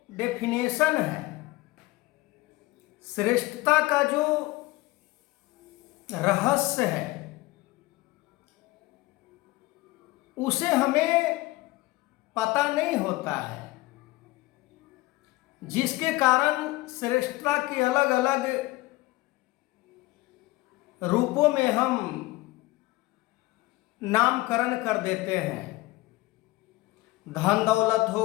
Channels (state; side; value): quieter; right; 20.2 dB